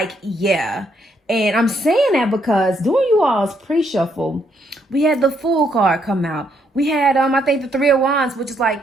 And I'm saying that because during you all's pre-shuffle, we had the Fool card come out. We had, I think the Three of Wands, which is like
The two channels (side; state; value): both; normal; correlation 0.73